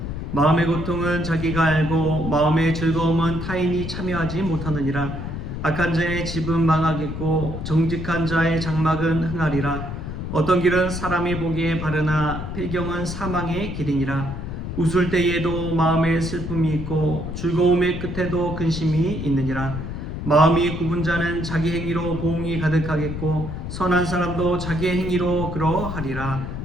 마음의 고통은 자기가 알고 마음의 즐거움은 타인이 참여하지 못하느니라. 악한 자의 집은 망하겠고 정직한 자의 장막은 흥하리라. 어떤 길은 사람이 보기에 바르나 필경은 사망의 길이니라. 웃을 때에도 마음에 슬픔이 있고 즐거움의 끝에도 근심이 있느니라. 마음이 굽은 자는 자기 행위로 보응이 가득하겠고 선한 사람도 자기의 행위로 그러하리라.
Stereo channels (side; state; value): left; noise; rumble, 6 dB below the sound